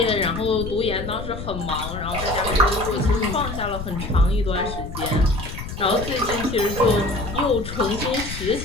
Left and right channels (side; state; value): left; noise; rumble, 8 dB below the sound